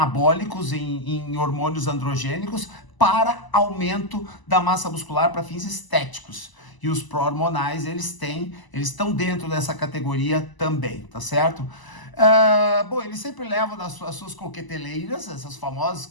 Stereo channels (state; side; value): late; right; 1.0 ms